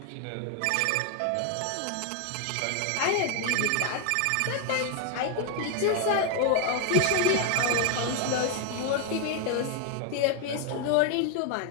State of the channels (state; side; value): different; both; correlation 0.01